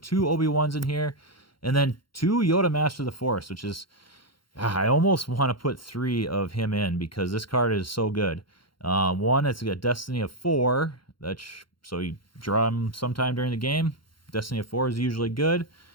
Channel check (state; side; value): late; right; 0.73 ms